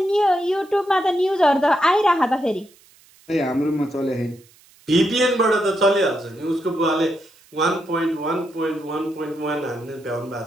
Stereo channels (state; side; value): noise; right; hiss, 29 dB below the sound